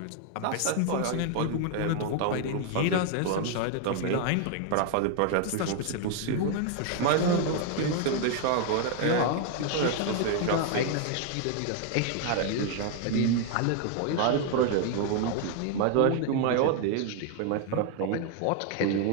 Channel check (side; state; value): both; different; correlation 0.00